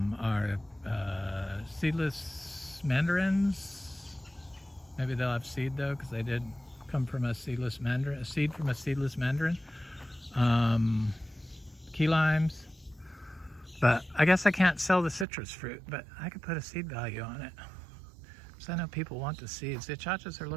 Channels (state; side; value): drops out; left; at 15.2 s